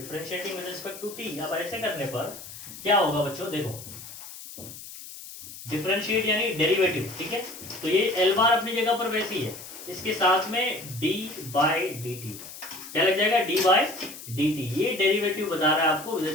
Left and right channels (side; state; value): left; noise; hiss, 14 dB below the sound